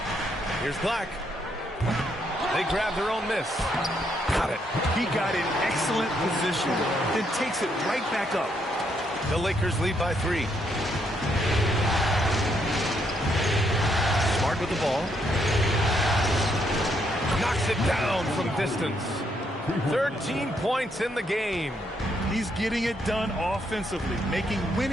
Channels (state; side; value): normal; both; correlation 0.75